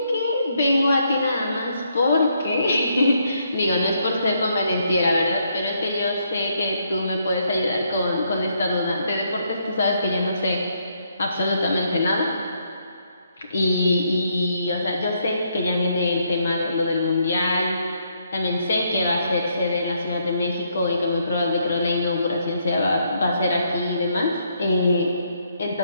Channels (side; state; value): both; inverted; correlation -0.74